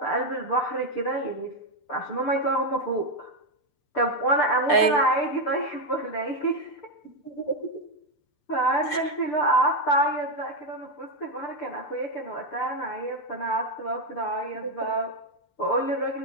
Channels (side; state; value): right; late; 6.8 ms